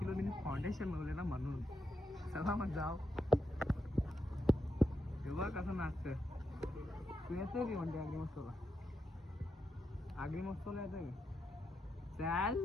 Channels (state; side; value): normal; both; correlation 0.84